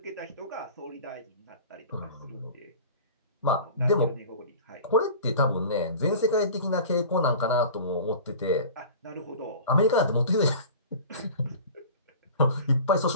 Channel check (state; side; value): inverted; both; correlation -0.39